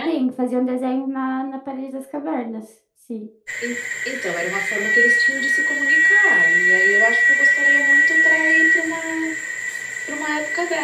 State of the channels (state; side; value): identical; both; correlation 1.00